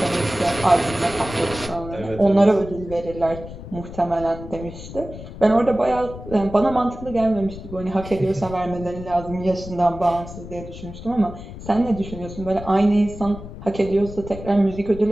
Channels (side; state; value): left; noise; rumble, 12 dB below the sound